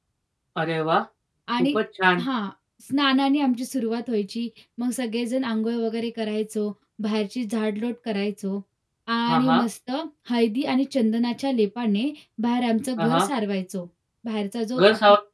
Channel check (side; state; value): both; identical; correlation 1.00